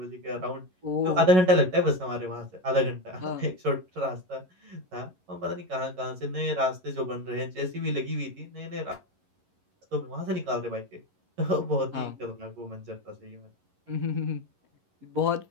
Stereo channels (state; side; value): late; left; 11 ms